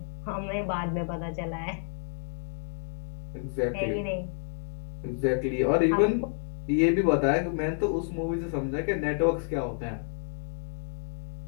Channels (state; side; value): silent; right; digital silence